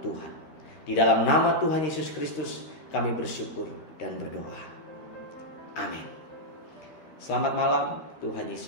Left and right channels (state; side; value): late; right; 13 ms